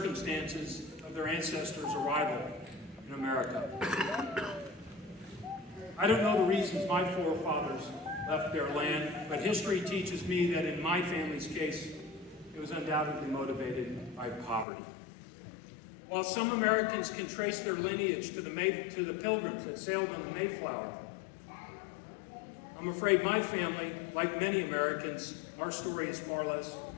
of their ancestors' arrival in America. I don't know the reasons my forefathers left their land, but history teaches me that in my family's case, it was undoubtedly motivated by poverty. While some Americans can trace their lineage to the pilgrims that sailed on the Mayflower, I'm afraid my family, like many Americans, our story is far less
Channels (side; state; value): right; drops out; at 14.7 s